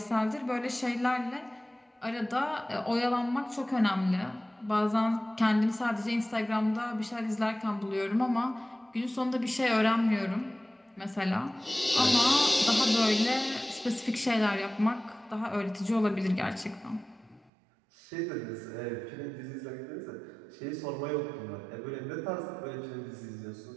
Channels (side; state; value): left; drops out; at 17.5 s